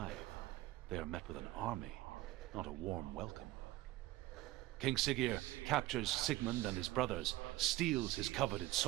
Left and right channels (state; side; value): quieter; left; 17.1 dB